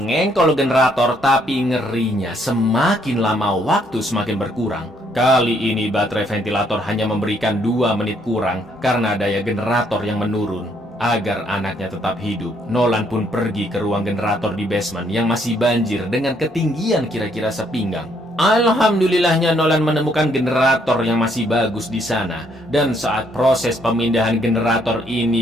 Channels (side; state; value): both; normal; correlation 0.69